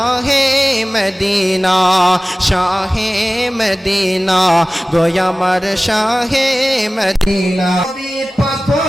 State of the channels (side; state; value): both; normal; correlation 0.97